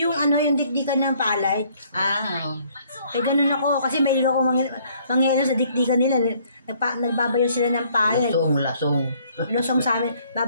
yung dikdikan ng palay. Ganun ako. Kasi may ako mangyayalo sa dikdikan nila. Nagbabayo sila ng palay. Lasong. Lusong sa amin.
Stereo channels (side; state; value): both; inverted; correlation -0.62